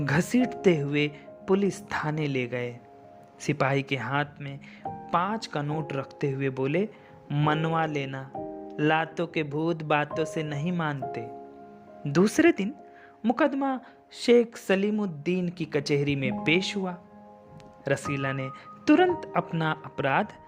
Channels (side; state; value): both; identical; correlation 1.00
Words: हुए पुलिस थाने ले गए। सिपाही के हाथ में 5 का नोट रखते हुए बोले, मनवा लेना, लातों के भूत बातों से नहीं मानते। दूसरे दिन मुकदमा शेख सलीमुद्दीन की कचहरी में पेश हुआ। रसीला ने तुरंत अपना अपराध